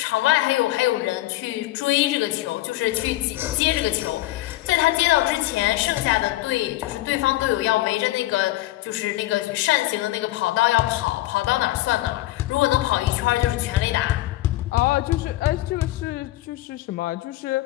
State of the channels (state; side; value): quieter; right; 16.9 dB